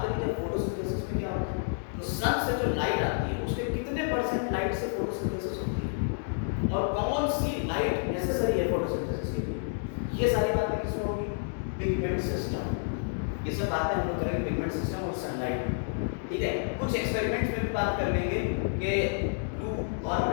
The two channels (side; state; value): right; silent; digital silence